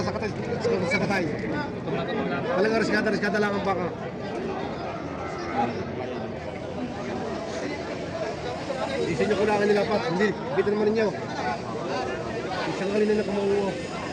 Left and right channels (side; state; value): both; identical; correlation 1.00